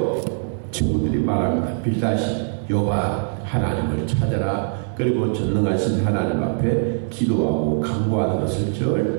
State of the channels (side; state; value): left; silent; 62 dB below the other